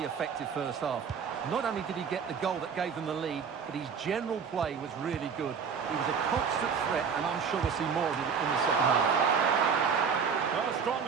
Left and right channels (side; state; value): left; quieter; 6.3 dB